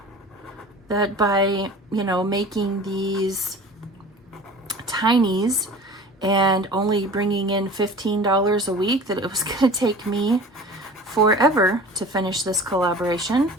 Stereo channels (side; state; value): both; normal; correlation 0.41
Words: that by, you know, making these tinies and only bringing in $15 a week that it was going to take me forever to finish this collaboration.